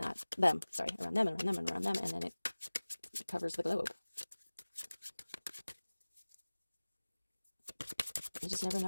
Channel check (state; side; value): inverted; both; correlation -1.00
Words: that, around them, and around them, and around them, and then it covers the globe. You just never